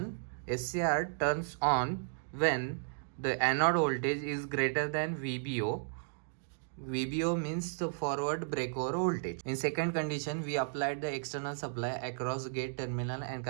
SCR turns on when the anode voltage is greater than VBO. VBO means the forward breakover voltage. In second condition, we applied the external supply across gate terminal and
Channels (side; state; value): left; silent; digital silence